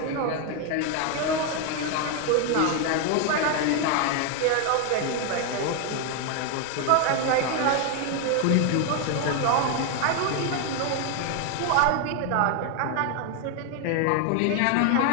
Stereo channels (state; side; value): different; both; correlation 0.01